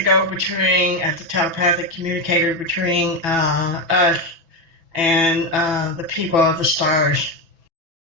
go-between, as the telepathic communicator between us and the people of the stars.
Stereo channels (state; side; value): late; left; 6.0 ms